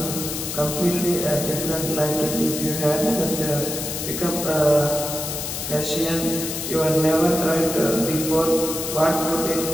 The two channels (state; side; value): noise; left; hiss, 5 dB below the sound